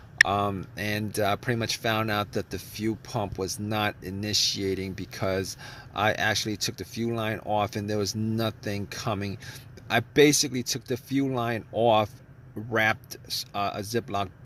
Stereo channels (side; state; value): both; identical; correlation 1.00